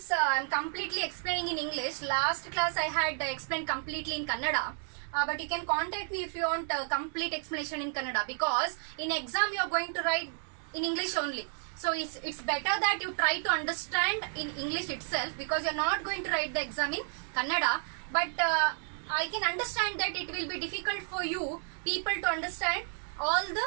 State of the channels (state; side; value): silent; left; 57 dB below the other